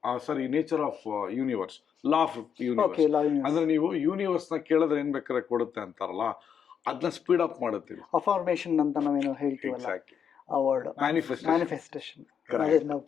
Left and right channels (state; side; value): quieter; right; 7.6 dB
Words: sorry nature of universe, law of universe. ಅಂದ್ರೆ ನೀವು ಯೂನಿವರ್ಸ್ ನ ಕೇಳಿದ್ರೆ ಏನ್ ಬೇಕಾದ್ರೆ ಕೊಡುತ್ತೆ ಅಂತಾರಲ್ಲ, ಅದನ್ನ ಸ್ಪೀಡ್ ಅಪ್ ಮಾಡುತ್ತೆ. ಅಫರ್ಮೇಷನ್ ಅಂತ ನಾವೇನು ಹೇಳ್ತೀವಲ್ಲ, ಆ ವರ್ಡ್ ಮ್ಯಾನಿಫೆಸ್ಟೇಷನ್.